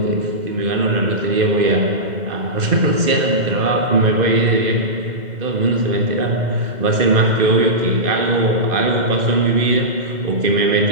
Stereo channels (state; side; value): late; left; 2.0 ms